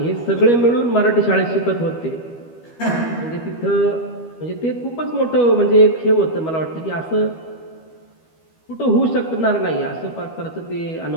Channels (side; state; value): right; late; 12 ms